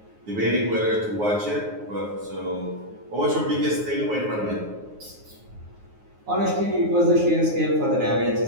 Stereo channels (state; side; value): late; left; 9.5 ms